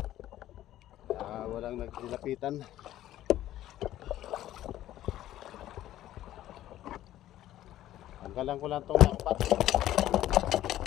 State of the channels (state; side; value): quieter; right; 13.4 dB